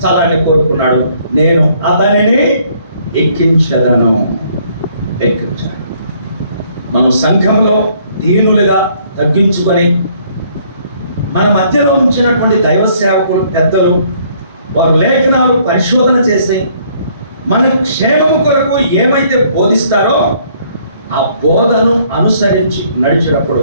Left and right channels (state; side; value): inverted; both; correlation -0.64